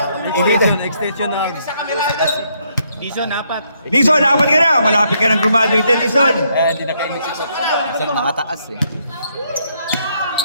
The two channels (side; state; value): both; inverted; correlation -0.73